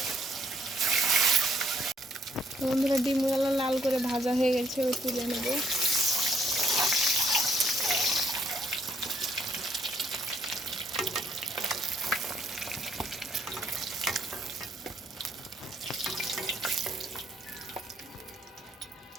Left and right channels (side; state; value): both; normal; correlation 0.69